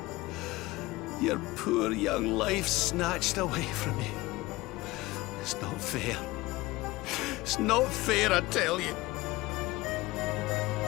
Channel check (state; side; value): quieter; right; 20.0 dB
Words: Your poor young life snatched away from you. It's not fair. It's not fair, I tell you.